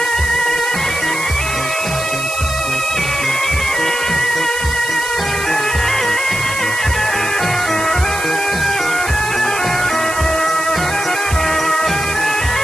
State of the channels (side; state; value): right; noise; hiss, 8 dB below the sound